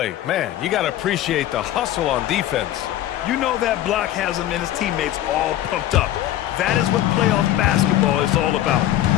Man, you got to appreciate the hustle on defense. You know that block has him and his teammates all pumped up. That is what playoff basketball is all about.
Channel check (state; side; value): quieter; right; 13.1 dB